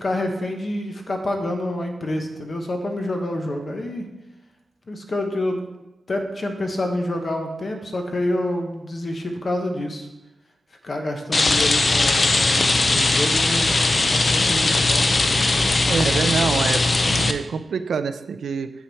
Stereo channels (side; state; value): both; normal; correlation 0.92